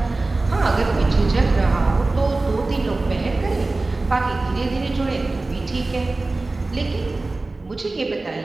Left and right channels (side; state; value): left; quieter; 3.2 dB